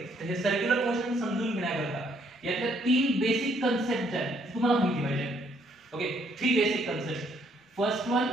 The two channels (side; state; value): both; normal; correlation 0.68